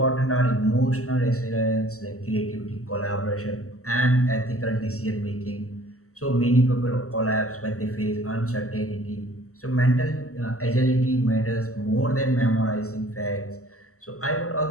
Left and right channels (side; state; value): right; late; 0.64 ms